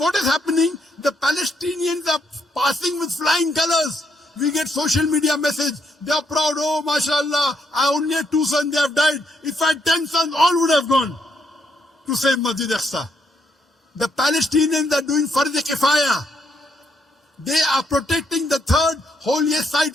is happening? The Palestinians are passing with flying colors. We get social media message. They are proud. Oh, mashallah, I only had 2 sons, they have died. If I had 10 sons, all would have gone to save Masjid Aqsa. The Palestinians are doing Fard Kifaya. They are protecting the 3rd holiest site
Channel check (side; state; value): both; normal; correlation 0.75